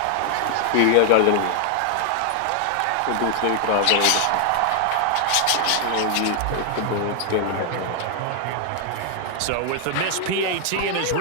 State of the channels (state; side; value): different; both; correlation 0.00